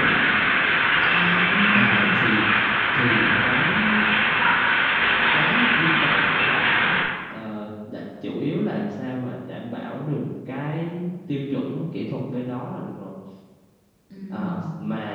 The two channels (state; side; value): identical; both; correlation 1.00